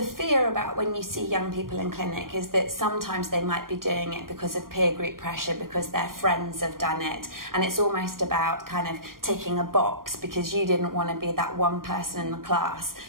fear about when you see young people in clinic is that sometimes they might be doing it because of peer group pressure, because their friends have done it, and it's almost about kind of ticking a box because you didn't want to be that one person in the class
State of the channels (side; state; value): left; late; 0.91 ms